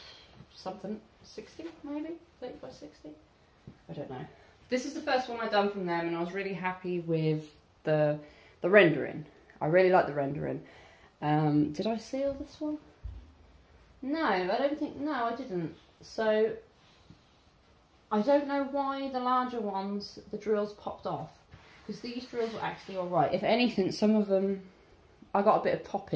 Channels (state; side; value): identical; both; correlation 1.00